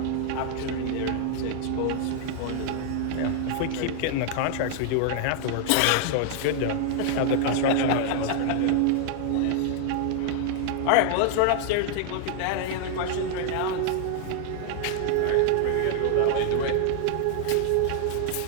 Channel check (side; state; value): both; different; correlation 0.00